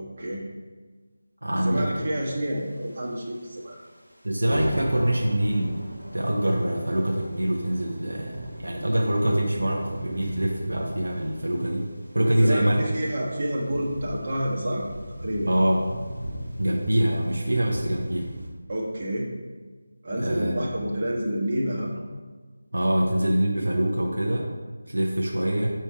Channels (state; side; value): inverted; both; correlation -0.97